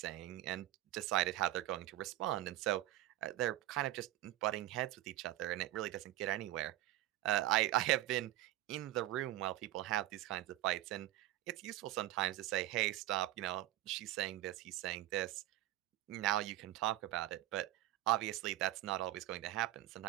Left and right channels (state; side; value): quieter; left; 15.2 dB